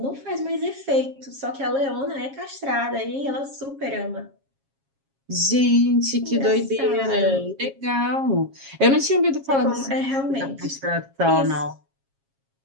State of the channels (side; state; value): left; late; 7.4 ms